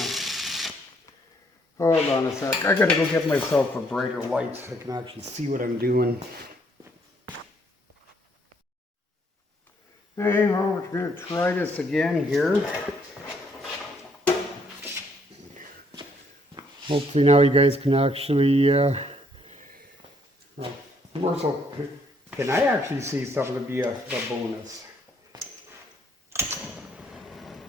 Hold on a sec. I gotta go get myself a brighter light so I can actually see what I'm doing. Hey, well, we're going to try this again here. Hopefully now you guys can actually, more so, can I actually see something to be a bonus?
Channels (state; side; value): normal; both; correlation 0.68